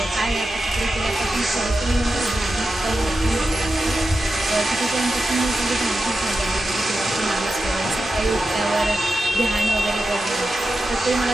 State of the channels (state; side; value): normal; both; correlation 0.91